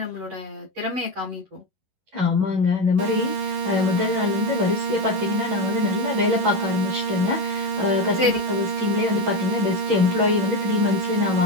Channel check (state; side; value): late; left; 11 ms